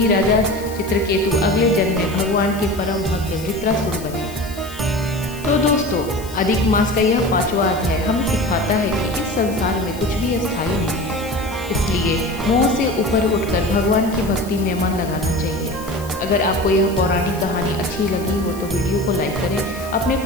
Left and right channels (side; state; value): left; noise; hiss, 17 dB below the sound